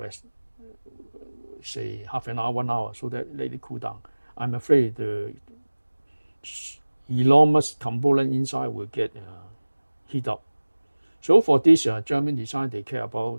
say half an hour, 1 hour, so that let it cool down. I'm afraid the enormous component inside will get heat up. So for this German design, they care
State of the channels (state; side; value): inverted; both; correlation -1.00